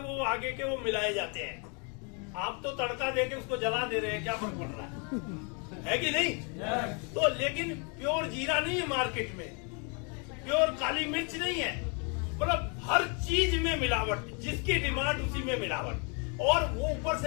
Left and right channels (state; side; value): quieter; right; 36.0 dB